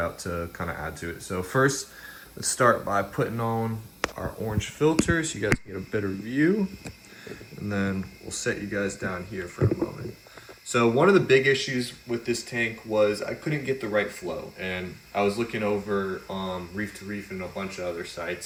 to kind of add to it. So first, let's start by putting on our orange filter so you guys can get a better view, and then we'll set you guys down here for a moment. So one of the big issues with this tank was I couldn't get the right flow, and I was looking over Reef to Reef and a bunch of other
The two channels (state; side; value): identical; both; correlation 1.00